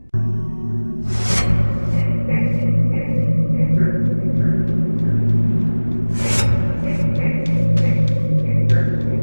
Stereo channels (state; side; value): inverted; both; correlation -1.00